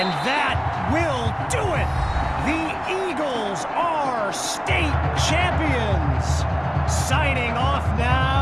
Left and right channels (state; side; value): identical; both; correlation 1.00